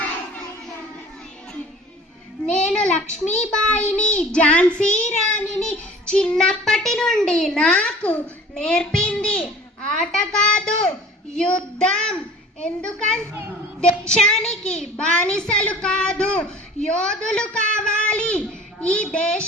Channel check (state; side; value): normal; both; correlation 0.45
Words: నేను లక్ష్మీబాయిని, ఝాన్సీ రాణిని. చిన్నప్పటి నుండి నాకు నేర్పింది ఆట కాదు యుద్ధం. ఎందుకంటే దేశానికి బానిసలు కాదు, యోధులు కావాలి. ఈ